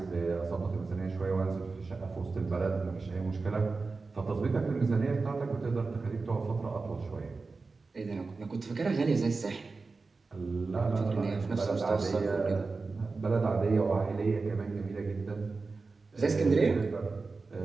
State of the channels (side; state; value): left; quieter; 4.1 dB